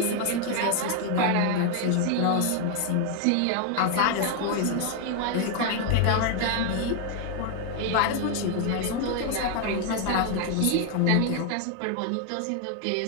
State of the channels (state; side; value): different; both; correlation 0.00